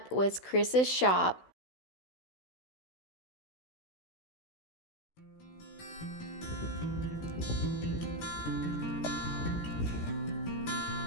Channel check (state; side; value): late; right; 16 ms